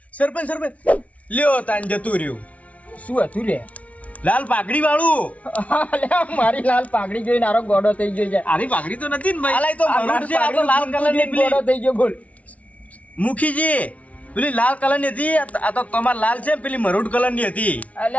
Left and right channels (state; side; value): late; right; 0.067 ms